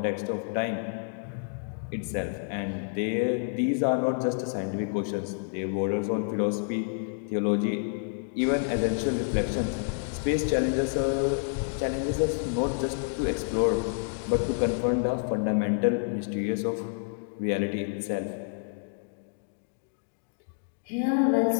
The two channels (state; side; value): silent; right; digital silence